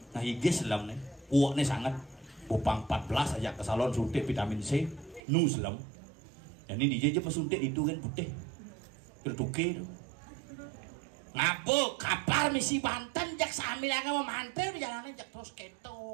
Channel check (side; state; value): left; drops out; at 5.2 s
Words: Nah gigis selam nih kuaknya sangat bupang 14 aja ke salon suntik vitamin C nu selam dan ini DJ aja suntik itu kan putih berduke ngapu kapal misi Banten jak sambil yang memantel di jalannya jak terus keto